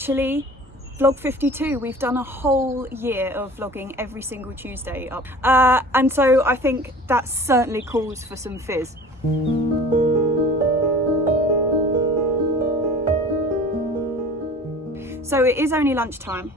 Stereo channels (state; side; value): normal; both; correlation 0.43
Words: vlog 52. We've done a whole year of vlogging every single Tuesday up. And so I think that certainly calls for some fizz. So it is only lunchtime,